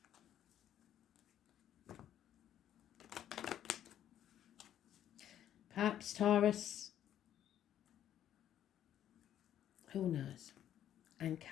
Perhaps Taurus. Who knows? And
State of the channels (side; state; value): right; quieter; 10.9 dB